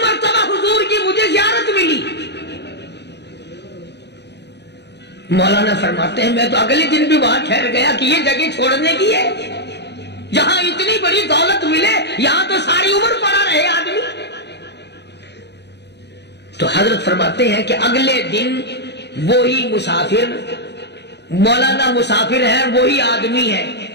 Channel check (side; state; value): right; late; 0.50 ms